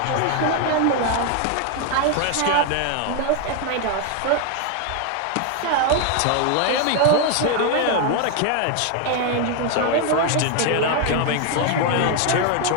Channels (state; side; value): different; both; correlation 0.01